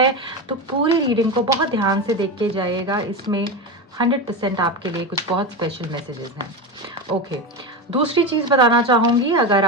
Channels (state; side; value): normal; both; correlation 0.18